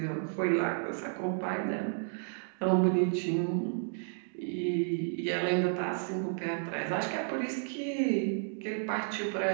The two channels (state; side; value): silent; left; digital silence